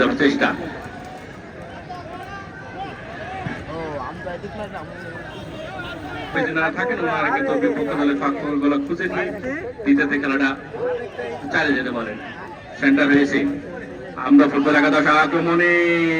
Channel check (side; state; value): both; identical; correlation 1.00